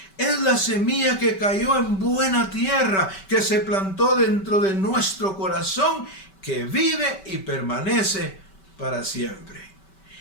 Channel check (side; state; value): right; late; 5.2 ms